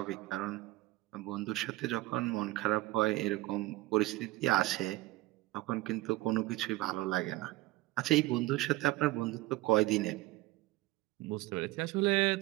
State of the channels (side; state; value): left; quieter; 18.6 dB